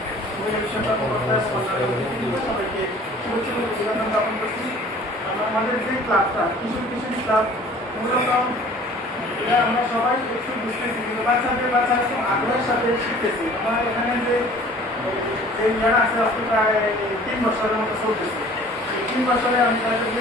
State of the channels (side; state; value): both; normal; correlation 0.49